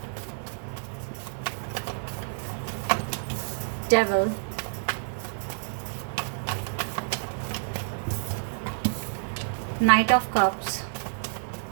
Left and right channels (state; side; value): silent; left; 59 dB below the other